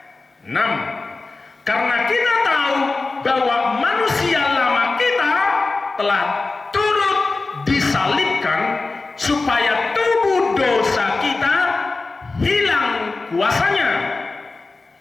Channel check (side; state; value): right; quieter; 3.6 dB